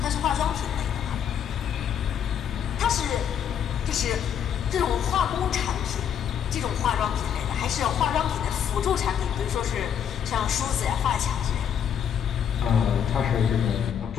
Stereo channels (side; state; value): right; quieter; 8.5 dB